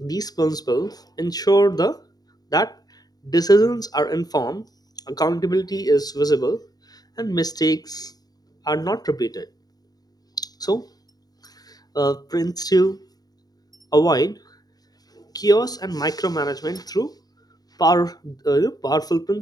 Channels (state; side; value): late; right; 0.19 ms